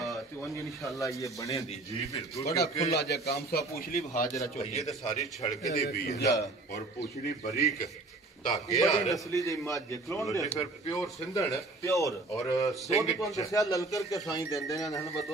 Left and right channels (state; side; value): quieter; left; 3.1 dB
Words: ਤੇ ਉਹ ਇਨਸ਼ਾਅੱਲਾ ਇਹ ਬਣੇ ਦੀ ਜੀ ਬਿਲਕੁਲ ਬੜਾ ਖੁੱਲਾ ਜਿਹਾ ਕੰਮ ਸਾ ਪੁੱਛਲੀ ਹਾਜ਼ਰਾ ਚੋਈ ਇਹ ਤਾਂ ਸਾਰੀ ਛੜਕ ਦੀ ਵੀ ਹੈ ਔਰ ਪੁੱਛਲੀ ਬਰੀਕ ਧਾਗੇ ਆ ਨਸਲੀ ਦੀ ਮੱਝ ਕਲੋਨ ਦੇ ਫਿਰ ਪਿਓਰ ਸਿੰਧਣ ਪਿਓਰ ਔਰ ਸਿੰਘ ਤੋਂ ਦੱਸਿਆ ਲਲਕਰ ਕੇ ਸਾਈਂ ਦਿੰਦੇ ਨੇ ਹਨ